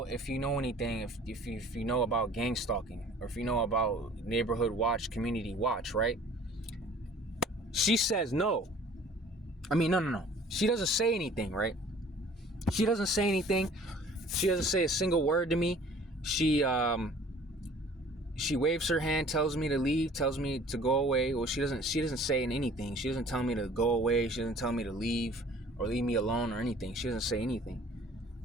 if you know anything, if you know about gang stalking, or if you know about neighborhood watch, community watch, right? She says no. I mean, no. She doesn't say anything, right? She doesn't say anything. She doesn't say a single word to me. She waves her hand, tells me to leave, tells me to go away. Well, she doesn't say anything. She doesn't tell me to go away. She doesn't tell me to leave or leave me alone or anything. She doesn't say anything.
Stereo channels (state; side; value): normal; both; correlation 0.50